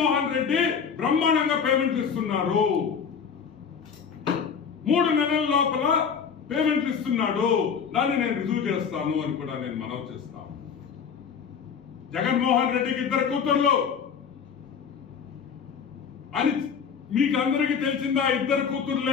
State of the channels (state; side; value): quieter; right; 6.7 dB